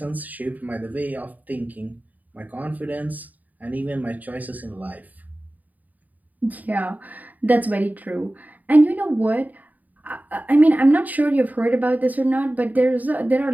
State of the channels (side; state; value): left; late; 0.079 ms